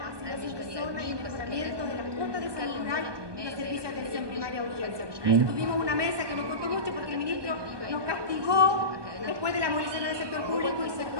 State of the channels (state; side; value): late; left; 1.2 ms